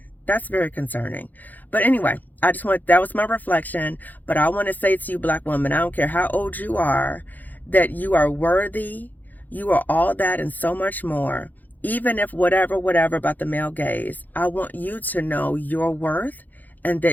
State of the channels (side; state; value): right; late; 0.083 ms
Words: That's very concerning. But anyway, that was my reflection. But I want to say to you, black women, I don't care how old you are, that you are worthy. You are all that and so much more. Even if whatever about the male gaze, I want you to know your worth and